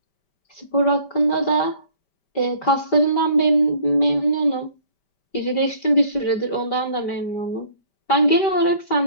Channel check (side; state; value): right; late; 5.1 ms